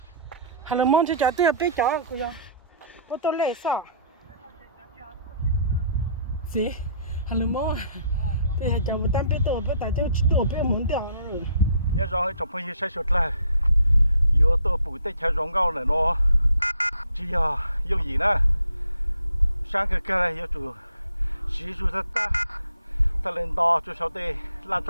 Hello, mong cho cháu tôi biết cháu của cháu, tôi tôi lấy sao? Gì? Hello, mong. Bây giờ cháu biết tôi biết tại cháu biết muốn掉rồi. Nhớ rồi trong phong sẽ sụt lại yếu tố bụi tết cha rong gạo này nó chỉ dùng gì nè sáng cái này yếu chủ sử dụng ta lên đo cho sau đây làm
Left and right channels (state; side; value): inverted; both; correlation -0.62